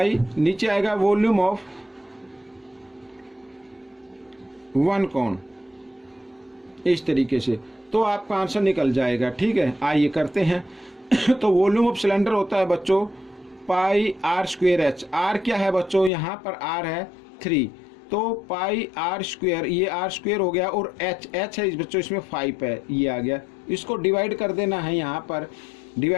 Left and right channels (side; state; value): right; drops out; at 16.1 s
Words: नीचे आएगा वॉल्यूम ऑफ 1 कोन। इस तरीके से, तो आपका आंसर निकल जाएगा। ठीक है, आइए करते हैं। तो वॉल्यूम ऑफ सिलेंडर होता है बच्चों पाई आर स्क्वेयर एच। आर क्या है बच्चों, यहाँ पर आर है 3, तो पाई आर स्क्वेयर, ये आर स्क्वेयर हो गया, और एच है इस बच्चों इसमें 5 है, ये आ गया। इसको डिवाइड कर देना है, यहाँ पर